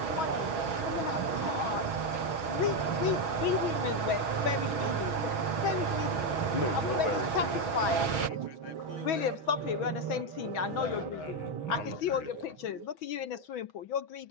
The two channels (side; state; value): right; late; 6.2 ms